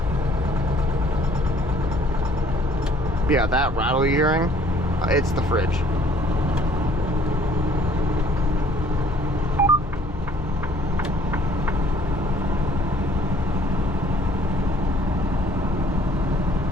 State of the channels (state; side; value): normal; both; correlation 0.58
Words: Yeah, that rattle you're hearing, it's the fridge.